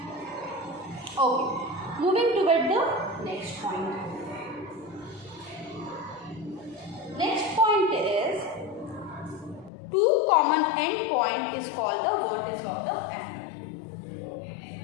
Okay, moving toward the next point. Next point is two common end point is called the vertex of the angle.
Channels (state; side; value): drops out; right; at 9.7 s